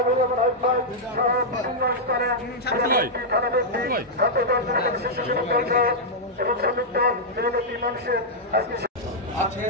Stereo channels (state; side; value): normal; both; correlation -0.06